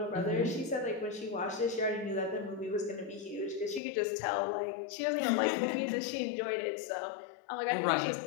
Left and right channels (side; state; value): right; drops out; at 3.8 s